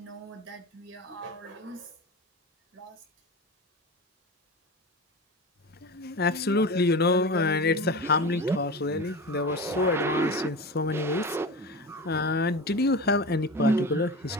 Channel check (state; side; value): normal; both; correlation 0.28